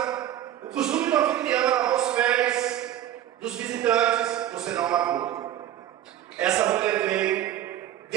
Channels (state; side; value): quieter; left; 11.9 dB